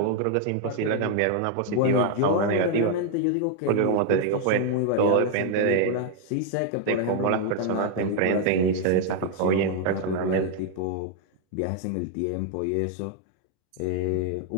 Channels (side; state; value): both; different; correlation 0.00